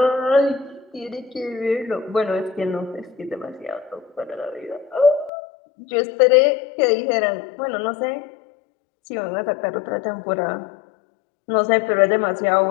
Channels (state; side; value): drops out; right; at 5.3 s